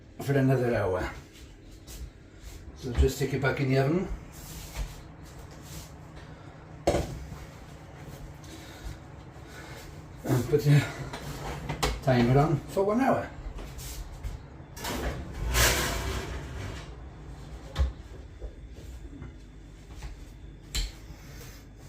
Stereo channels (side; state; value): both; identical; correlation 1.00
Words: for another hour. So just stick it back in the oven. And put the timer on for 1 hour.